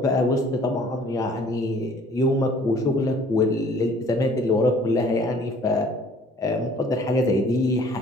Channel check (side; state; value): both; normal; correlation 0.55